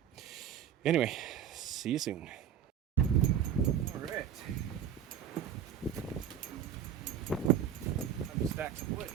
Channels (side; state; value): left; quieter; 9.1 dB